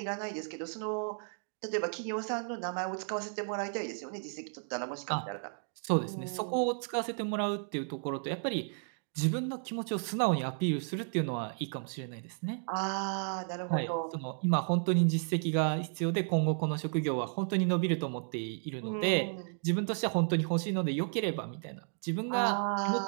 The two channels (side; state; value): left; silent; 56 dB below the other